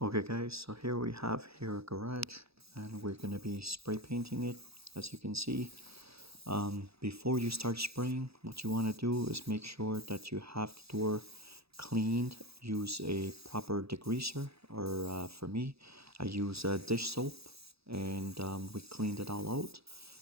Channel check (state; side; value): late; left; 0.77 ms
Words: Okay guys, so here we have here a garage and we're going to be spray painting it. As you can see, before you start spraying, what you want to do is make sure that you have the door cleaned. Use a proper degreaser, or for me I use dish soap, and we cleaned it all out.